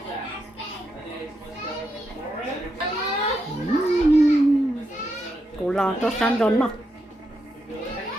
Cô lo cho sẵn rồi mà.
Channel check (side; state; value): both; normal; correlation 0.83